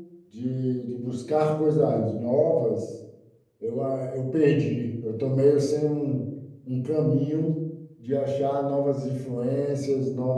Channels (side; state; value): both; identical; correlation 1.00